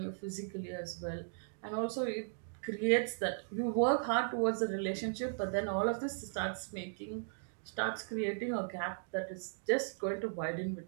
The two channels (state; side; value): silent; left; digital silence